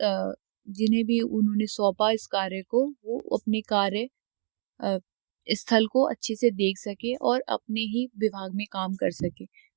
जिन्हें भी उन्होंने सौंपा इस कार्य को, वो अपने कार्य स्थल को अच्छे से देख सके और अपने ही विभाग में काम कर सके।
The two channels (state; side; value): silent; left; digital silence